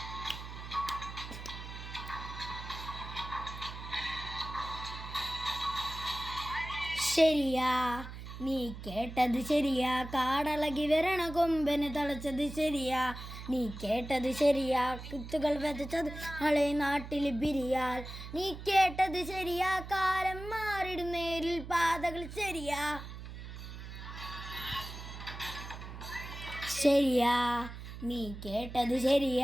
ശരിയാ നീ കേട്ടത് ശരിയാ, കാടളകി വരണ കൊമ്പന് തളച്ചത് ശരിയാ. നീ കേട്ടത് ശരിയാ, കുത്തുകൾ വിതച്ചത് നാളെ നാട്ടിൽ ബിരിയാൽ. നീ കേട്ടത് ശരിയാ, കാലം മാറിടും നേരിൽ പാതകൾ ശരിയാ. ശരിയാ നീ കേട്ടത്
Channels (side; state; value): right; noise; hum, 11 dB below the sound